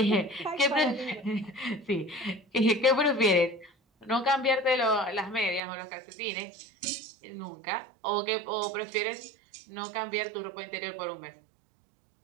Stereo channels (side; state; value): left; drops out; at 5.6 s